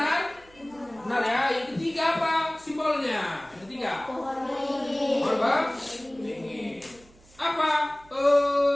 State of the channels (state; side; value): noise; right; hum, 27 dB below the sound